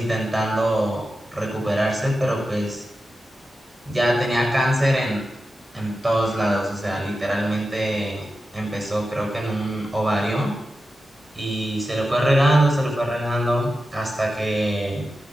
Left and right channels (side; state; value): both; normal; correlation 0.91